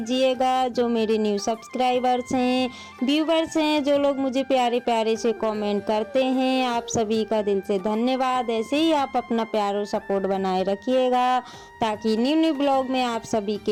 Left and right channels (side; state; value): both; identical; correlation 1.00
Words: जो मेरे न्यू सब्सक्राइबर्स हैं, व्यूवर्स हैं, जो लोग मुझे प्यारे प्यारे से कमेंट करते हैं, आप सभी का दिल से धन्यवाद। ऐसे ही आप अपना प्यार और सपोर्ट बनाए रखिएगा ताकि न्यू न्यू ब्लॉग में आप सभी